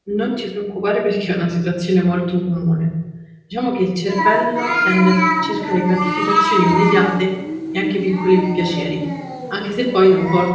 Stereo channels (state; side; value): identical; both; correlation 1.00